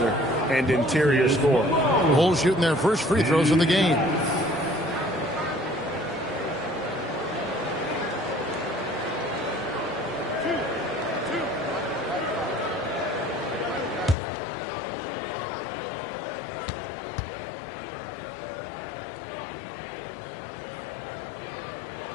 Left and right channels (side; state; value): right; drops out; at 14.2 s